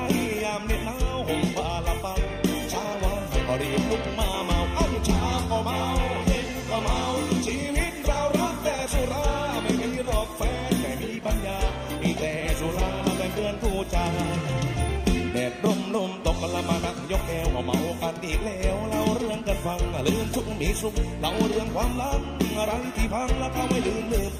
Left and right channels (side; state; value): both; identical; correlation 1.00